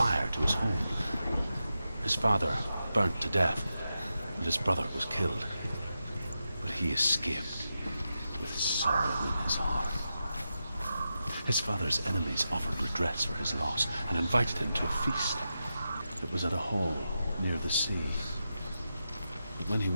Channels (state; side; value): inverted; both; correlation -0.89